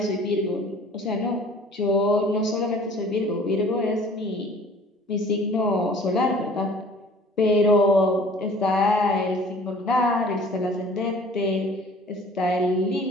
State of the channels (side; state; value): both; normal; correlation 0.50